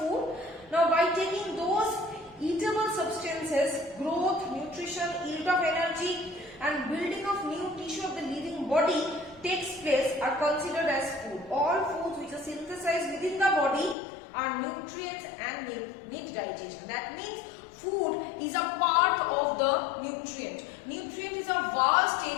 now by taking those eatable substances, growth, nutrition, yield of energy and building of new tissue of the living body takes place are considered as food. All foods which are synthesized within the body are nutrients and need digestion. That means food is a part of the nutrient. Nutrient is a vast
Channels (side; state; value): right; drops out; at 14.0 s